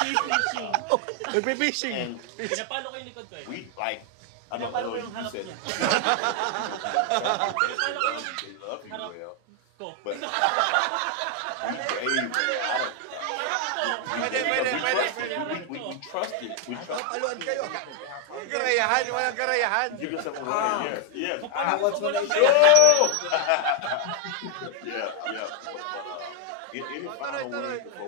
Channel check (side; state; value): both; different; correlation 0.00